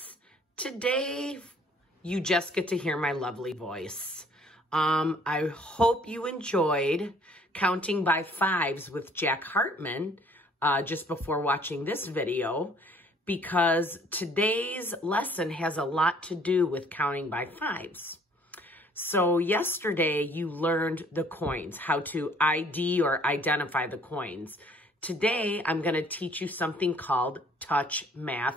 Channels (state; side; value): normal; both; correlation 0.58